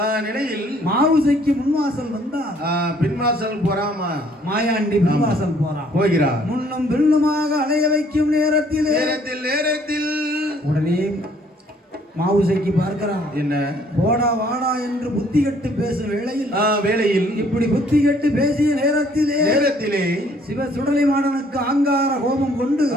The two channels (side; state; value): both; normal; correlation 0.62